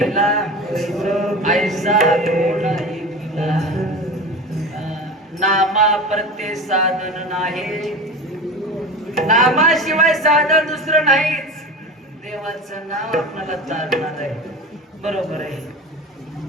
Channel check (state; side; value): normal; both; correlation 0.30